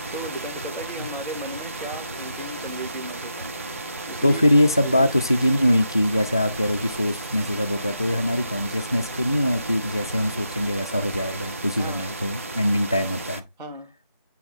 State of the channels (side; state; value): both; inverted; correlation -0.84